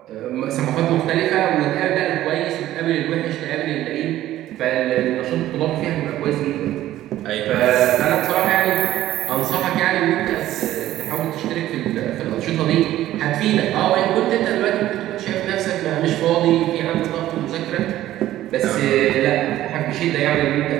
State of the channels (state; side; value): quieter; left; 13.9 dB